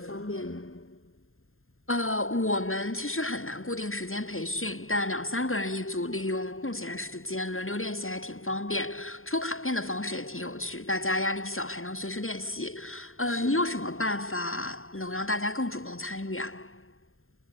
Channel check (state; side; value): late; right; 0.61 ms